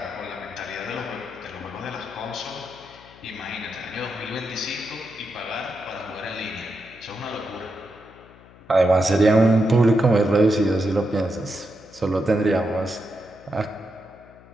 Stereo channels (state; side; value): noise; left; hum, 23 dB below the sound